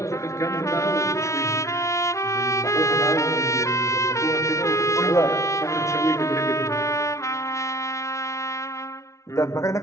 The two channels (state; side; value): late; right; 0.14 ms